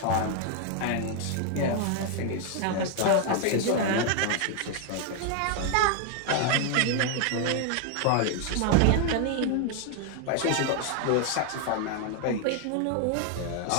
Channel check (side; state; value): both; different; correlation 0.01